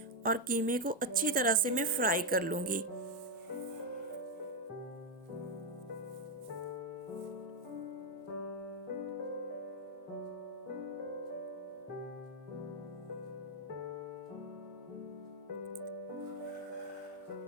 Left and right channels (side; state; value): both; normal; correlation 0.03